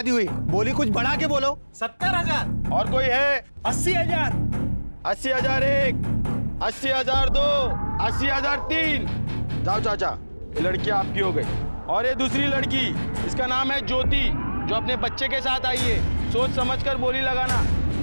हुई, बोली कुछ बढ़ा के बोलो। 70,000। और कोई है? 80,000। 80,000 एक, 80,000 दो, 80,000 तीन। जाओ चाचा, ये लड़की आपकी हो गई। और ये दूसरी लड़की, इसका नाम है ज्योति, जो अपने बच्चे के साथ आई है। सोच समझकर बोली लगाना।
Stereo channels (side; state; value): both; inverted; correlation -1.00